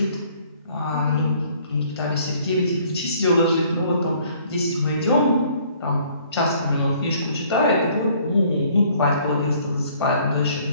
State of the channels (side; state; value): both; inverted; correlation -0.59